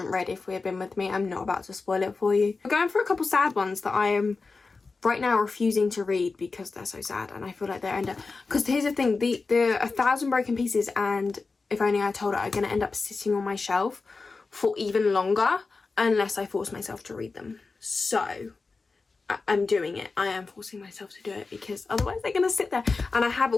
read If We Had Been With Me, I'm not about to spoil it for you. I'm going for a couple sad ones that I am right now refusing to read because they're so sad, and I feel like they're end up, because here's the thing, the 1,000 Broken Pieces and If Only I Told Her are going to end up sitting on my shelf for even longer unless I force myself to read them. So I'm doing it. I am forcing myself to do it because otherwise they're going to sit there. And I have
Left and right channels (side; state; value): right; quieter; 4.1 dB